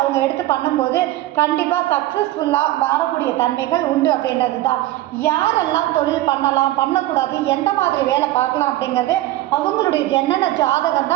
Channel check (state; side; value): quieter; left; 15.8 dB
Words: அவங்க எடுத்து பண்ணும்போது கண்டிப்பாக சக்ஸஸ்ஃபுல்லாக வரக்கூடிய தன்மைகள் உண்டு அப்படின்றது தான். யாரெல்லாம் தொழில் பண்ணலாம், பண்ணக்கூடாது, எந்த மாதிரி வேலை பார்க்கலாம் அப்படிங்கிறது அவங்களுடைய ஜனன ஜாதகம்